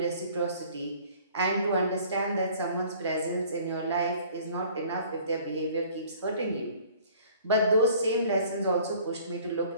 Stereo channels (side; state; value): both; inverted; correlation -0.53